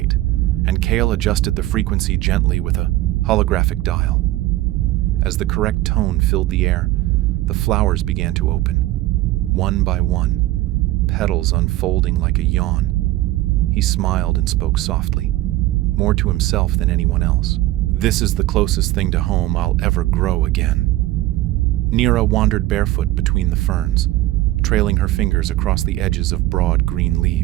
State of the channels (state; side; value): quieter; left; 16.6 dB